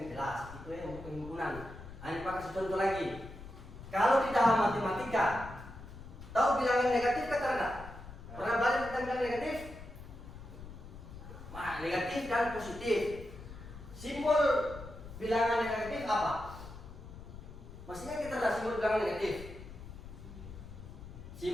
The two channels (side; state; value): left; noise; rumble, 14 dB below the sound